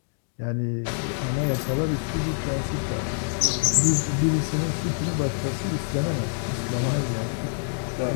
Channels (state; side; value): silent; right; digital silence